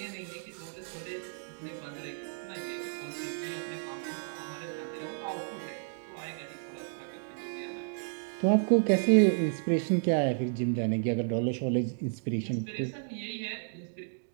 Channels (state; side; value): silent; left; digital silence